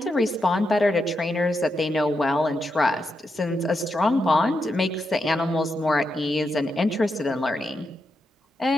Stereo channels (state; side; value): normal; both; correlation 0.85